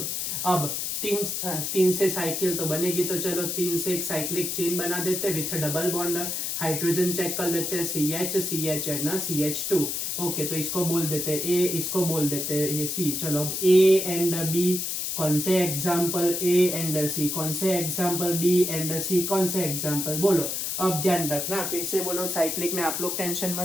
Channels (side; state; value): left; noise; hiss, 2 dB below the sound